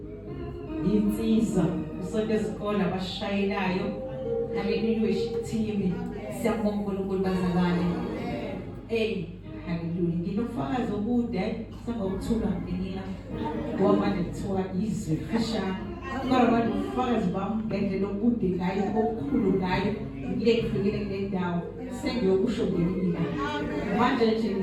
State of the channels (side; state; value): both; identical; correlation 1.00